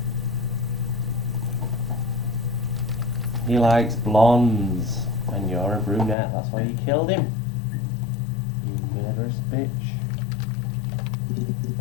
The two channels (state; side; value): drops out; right; at 6.2 s